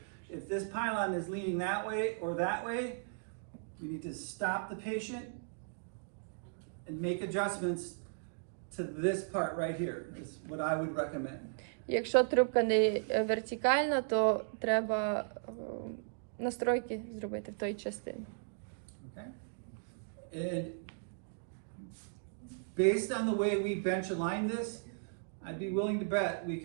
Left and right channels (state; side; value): silent; left; digital silence